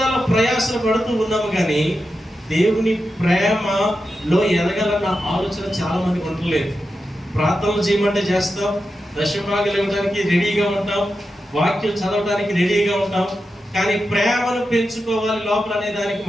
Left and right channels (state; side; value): normal; both; correlation 0.89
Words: ప్రయాసలు పడుతూ ఉన్నాము, కానీ దేవుని ప్రేమలో ఎదగాలన్న ఆలోచన చాలా మందికి ఉండలేదు. ప్రార్థనలు చేయమంటే చేస్తాం, దశభాగాలు ఇవ్వడానికి రెడీగా ఉంటాం, వాక్యం చదవడానికి రెడీగా ఉంటాం, కానీ ప్రేమను పెంచుకోవాలి లోపల అనే దానికి